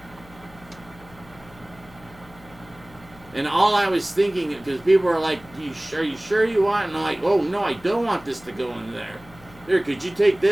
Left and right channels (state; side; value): noise; left; hum, 23 dB below the sound